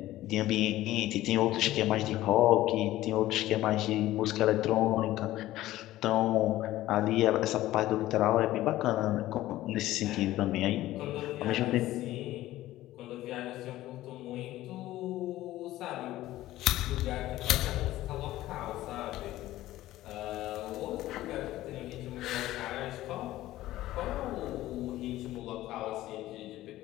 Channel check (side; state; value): right; quieter; 15.5 dB